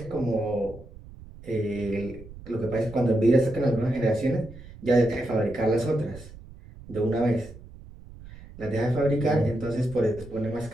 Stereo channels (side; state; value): right; noise; rumble, 17 dB below the sound